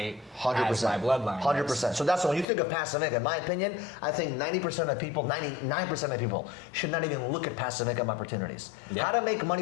100%. As my bloodline. 100%. So that's when you think of passive income. In my opinion, I think 90% of people, 99% of people should not even look at passive income opportunities. Yeah. How to make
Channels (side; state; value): right; drops out; at 2.5 s